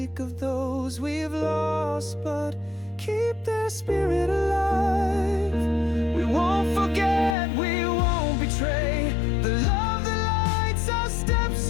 of those we've lost, but keep their spirit alive. We won't forget, we won't betray the love that lights our steps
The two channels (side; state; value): right; drops out; at 7.4 s